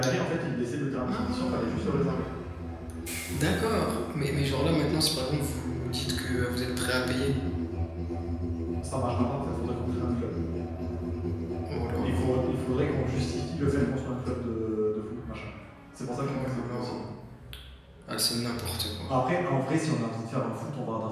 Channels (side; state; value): both; identical; correlation 1.00